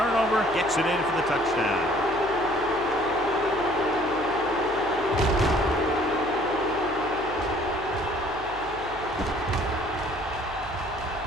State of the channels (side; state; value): left; noise; hum, 17 dB below the sound